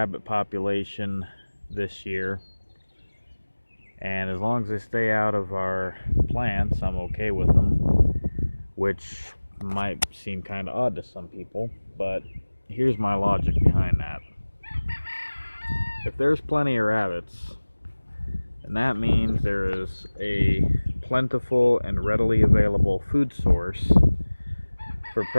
population this year. And as long as they stay out of our plants, I'm okay with them, which might seem kind of odd to some people, but here's my logic behind that. If there's plenty of rabbits, then that means there is a plentiful and readily available food source for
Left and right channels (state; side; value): inverted; both; correlation -1.00